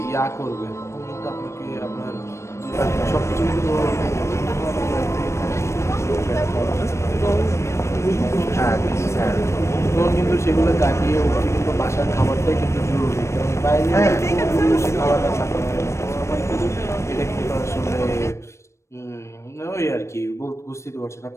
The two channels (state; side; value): late; right; 0.13 ms